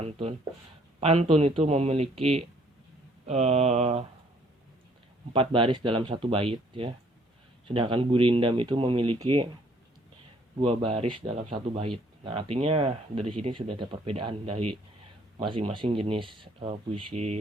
Pantun itu memiliki 4 baris dalam satu bait ya. Sedangkan gurindam itu memiliki 2 baris dalam satu bait. Nah, artinya dari sini sudah ada perbedaan dari masing-masing jenis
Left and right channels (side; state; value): both; normal; correlation 0.62